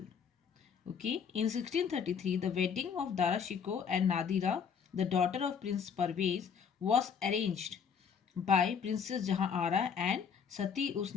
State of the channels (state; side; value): quieter; right; 6.9 dB